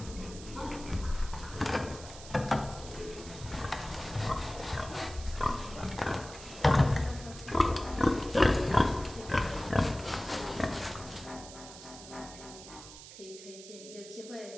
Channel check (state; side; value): noise; right; hiss, 15 dB below the sound